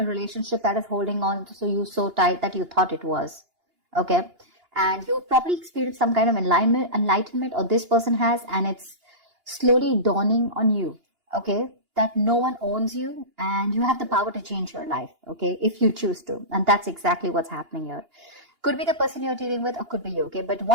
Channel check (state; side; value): late; left; 2.8 ms